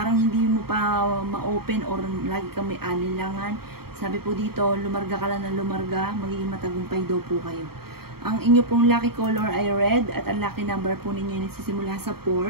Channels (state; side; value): late; left; 0.95 ms